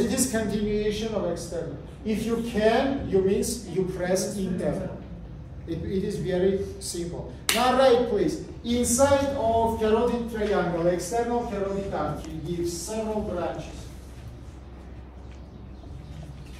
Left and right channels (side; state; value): both; identical; correlation 1.00